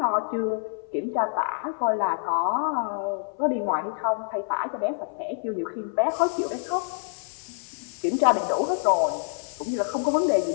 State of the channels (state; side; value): silent; right; 61 dB below the other